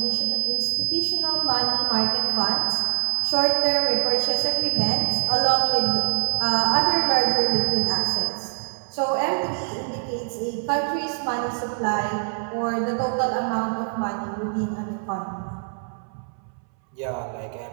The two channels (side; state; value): left; silent; 63 dB below the other